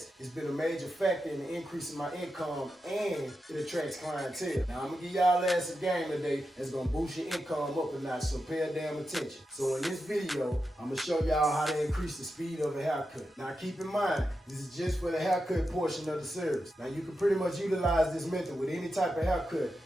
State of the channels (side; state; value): both; normal; correlation 0.89